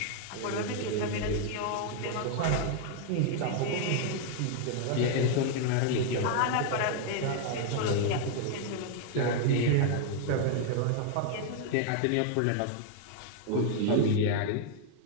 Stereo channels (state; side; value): different; both; correlation 0.00